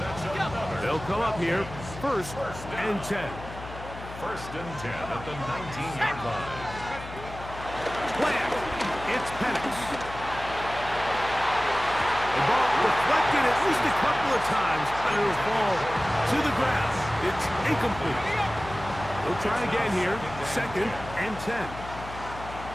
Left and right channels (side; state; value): left; noise; hum, 13 dB below the sound